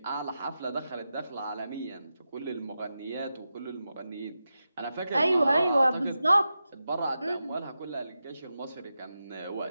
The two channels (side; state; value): both; inverted; correlation -0.90